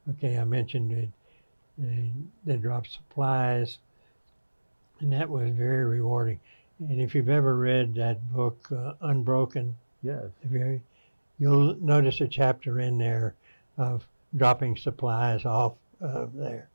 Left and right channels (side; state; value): both; inverted; correlation -1.00